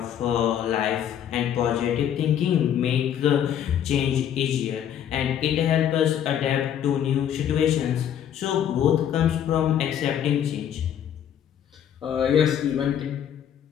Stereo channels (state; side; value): quieter; right; 9.7 dB